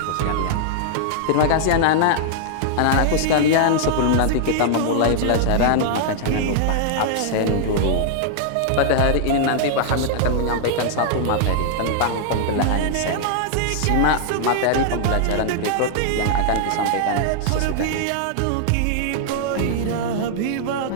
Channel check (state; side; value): different; both; correlation -0.01